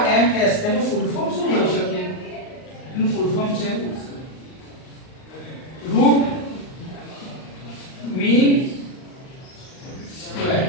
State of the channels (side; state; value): right; late; 38 ms